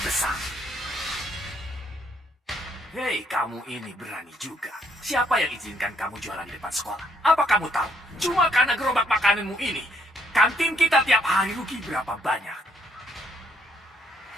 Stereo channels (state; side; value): normal; both; correlation 0.70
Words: Hei, kamu ini berani juga. Siapa yang izinkan kamu jualan di depan sekolah? Apa kamu tahu? Cuma karena gerobak makananmu ini, kantin kita tiap hari rugi berapa banyak?